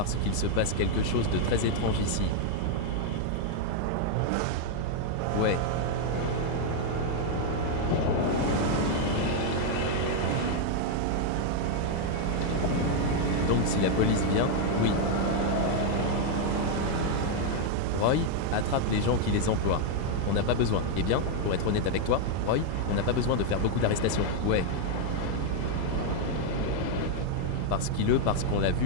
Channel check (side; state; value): both; different; correlation 0.00